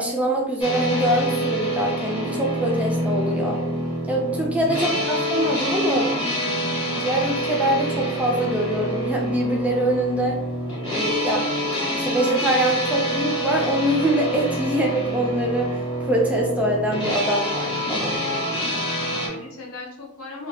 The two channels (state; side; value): normal; both; correlation 0.26